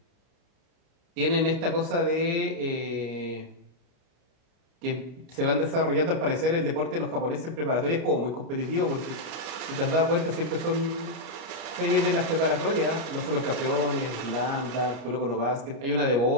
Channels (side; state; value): left; late; 29 ms